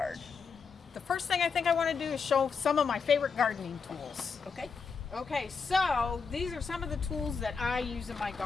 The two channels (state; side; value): quieter; right; 5.4 dB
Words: The first thing I think I want to do is show some of my favorite gardening tools. Okay, so these are some of the tools that I use in my